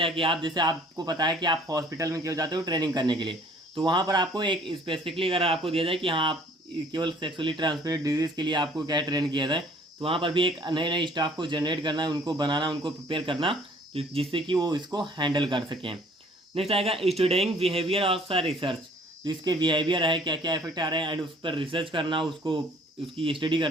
कि आप जैसे आपको पता है कि आप हॉस्पिटल में क्यों जाते हो ट्रेनिंग करने के लिए, तो वहाँ पर आपको एक स्पेसिफिकली अगर आपको दिया जाए कि हाँ आप केवल सेक्सुअली ट्रांसमिटेड डिजीज़ के लिए आपको क्या है ट्रेन किया जाए, तो वहाँ पर भी एक नए नए स्टाफ को जनरेट करना है, उनको बनाना, उनको प्रिपेयर करना जिससे कि वो इसको हैंडल कर सकें। नेक्स्ट आएगा स्टूडिंग बिहेवियर ऑफ रिसर्च, जो इसके बिहेवियर है क्या क्या इफेक्ट आ रहे हैं एंड उस पर रिसर्च करना, उसको उसकी स्टडी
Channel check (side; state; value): both; normal; correlation 0.56